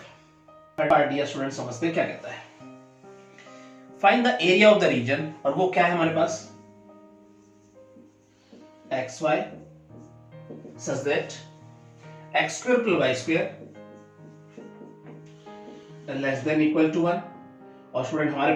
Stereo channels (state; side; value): identical; both; correlation 1.00